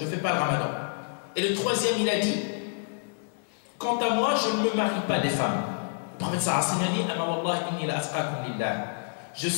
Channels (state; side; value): silent; right; digital silence